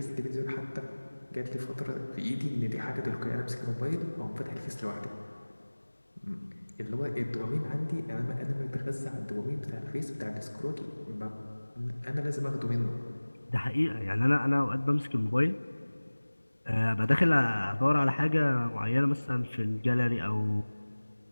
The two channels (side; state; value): both; inverted; correlation -1.00